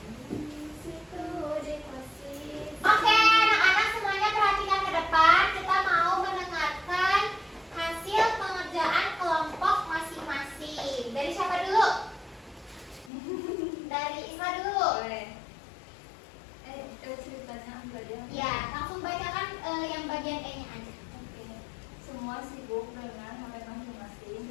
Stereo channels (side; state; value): right; drops out; at 13.1 s